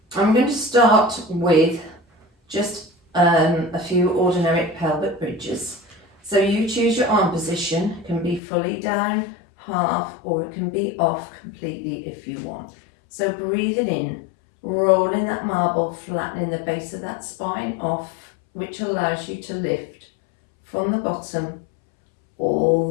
I'm going to start with just a few ordinary pelvic bridges. So you choose your arm position. It can be fully down, half, or it can be off completely if you want. So breathing in, rolling that marble, flattening the base of that spine off, which allows you to lift from the bottom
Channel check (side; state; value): right; drops out; at 8.4 s